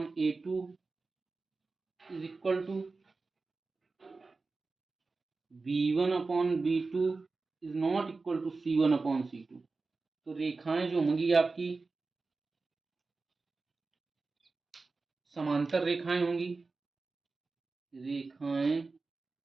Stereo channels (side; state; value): left; quieter; 3.9 dB